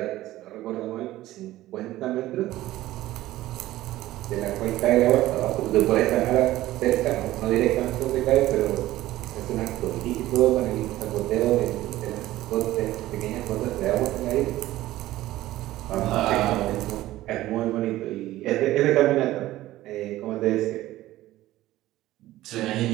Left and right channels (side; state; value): left; quieter; 15.7 dB